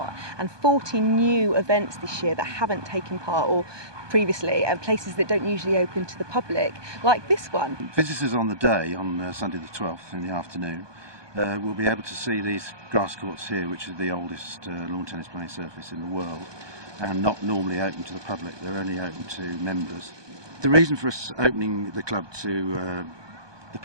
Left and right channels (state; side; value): late; left; 1.2 ms